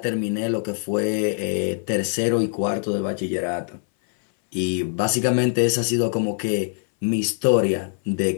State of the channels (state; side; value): silent; right; 62 dB below the other